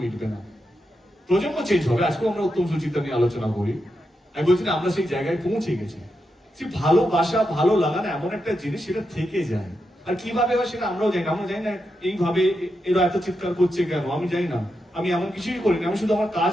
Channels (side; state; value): both; normal; correlation 0.86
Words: মিটবে না। প্রজন্ম চেঞ্জ হবে, আজকেও আমরা উত্তম সুচিত্রা নিয়ে আলোচনা করি, আমি বলছি না আমরা সেই জায়গায় পৌঁছে গেছি। সে ভালোবাসা, ভালো লাগা না এমন একটা জিনিস, সেটা থেকে যায়। আর কিভাবে হয় সেটা আমরাও জানি না, এইভাবে এরা এত চিৎকার করছে কেন আমি জানি না। আমি এমন কিছুই করিনি, আমি শুধু আমার